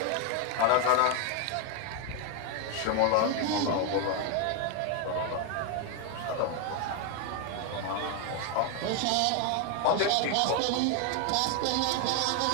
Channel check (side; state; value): both; different; correlation 0.01